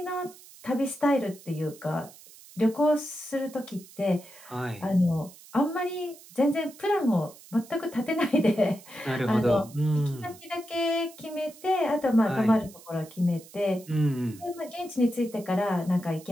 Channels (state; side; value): noise; right; hiss, 21 dB below the sound